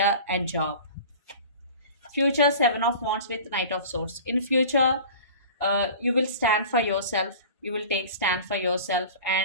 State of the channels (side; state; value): both; inverted; correlation -0.40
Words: and job. Future, Seven of Wands with Knight of Swords. In future, you will stand for yourself, you will take stand for yourself,